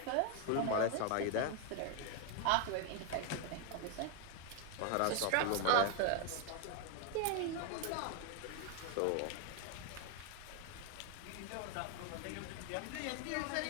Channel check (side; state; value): both; different; correlation 0.01